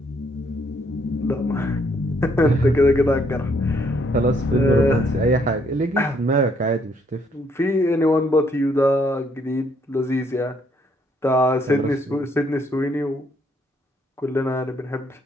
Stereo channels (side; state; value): both; normal; correlation 0.70